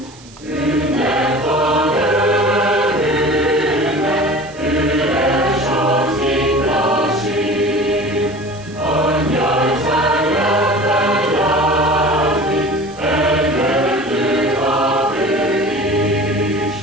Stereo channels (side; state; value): right; noise; hiss, 23 dB below the sound